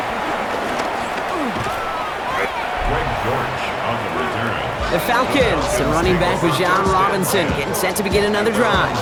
The Falcons, and running back was John Robinson, getting set to begin another drive.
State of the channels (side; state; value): both; identical; correlation 1.00